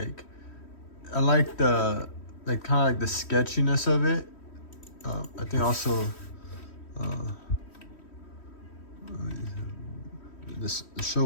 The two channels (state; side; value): late; right; 3.1 ms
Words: I like the kind of like the sketchiness of it. I think also the